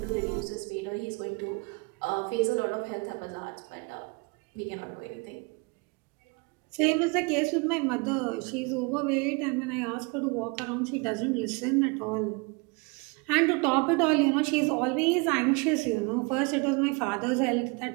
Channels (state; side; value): quieter; left; 30.0 dB